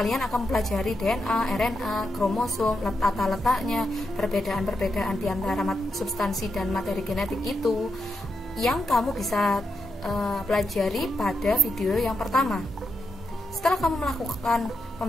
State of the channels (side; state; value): both; normal; correlation 0.83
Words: akan mempelajari DNA, RNA, kromosom, tata letaknya, perbedaan-perbedaan di antara substansi dan materi genetik itu yang kamu bisa pelajari pada video yang pertama. Setelah kamu melakukan